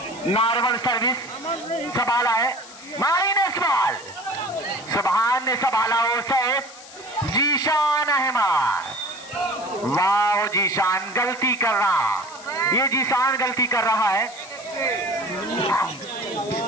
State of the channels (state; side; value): noise; left; hiss, 18 dB below the sound